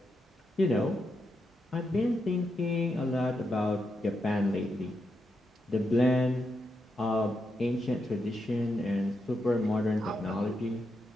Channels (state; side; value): normal; both; correlation 0.84